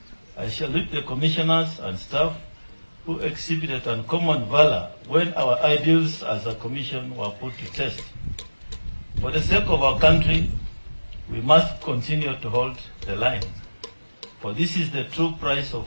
I salute the commissioners and staff who exhibited uncommon valor when our ideals as a commission were put to test. For the sake of our country, we must continue to hold the line. For this is the true price of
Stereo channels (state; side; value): inverted; both; correlation -1.00